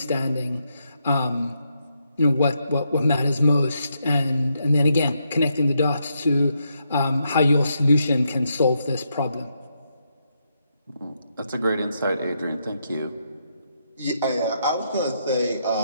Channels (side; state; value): both; inverted; correlation -0.80